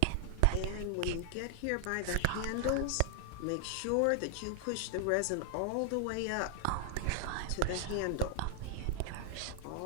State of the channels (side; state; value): both; different; correlation 0.00